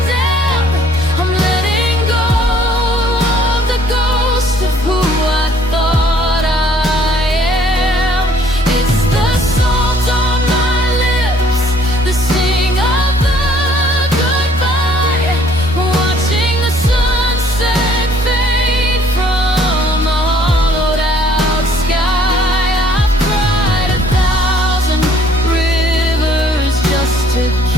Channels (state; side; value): normal; both; correlation 0.61